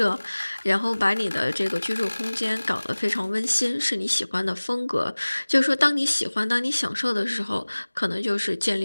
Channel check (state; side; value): inverted; both; correlation -1.00